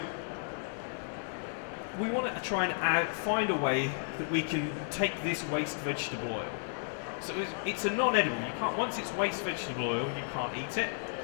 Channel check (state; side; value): silent; right; 56 dB below the other